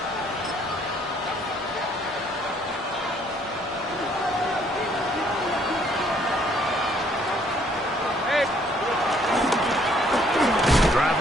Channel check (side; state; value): both; normal; correlation 0.64